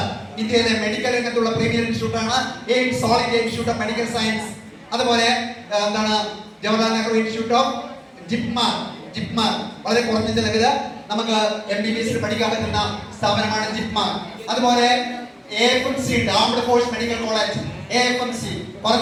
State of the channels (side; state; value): both; identical; correlation 1.00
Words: ഇന്ത്യയിലെ മെഡിക്കൽ രംഗത്തുള്ള പ്രീമിയർ ഇൻസ്റ്റിറ്റ്യൂട്ട് ആണ് AIIMS, All India Institute of Medical Science. അതുപോലെ എന്താണ് Jawaharlal Nehru institute of JIPMER വളരെ കുറഞ്ഞ ചെലവില് നമുക്ക് MBBS പഠിക്കാൻ പറ്റുന്ന സ്ഥാപനമാണ് ജിപ്മർ. അതുപോലെ AFMC ഉണ്ട്, armed force medical college. AFMC